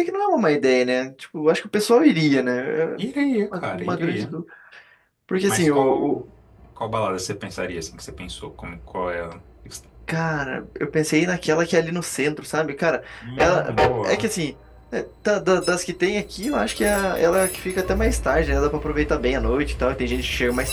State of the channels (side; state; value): both; identical; correlation 1.00